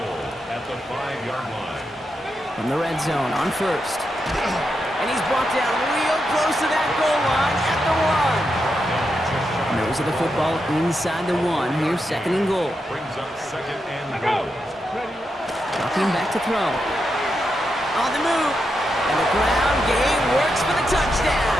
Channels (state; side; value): normal; both; correlation 0.85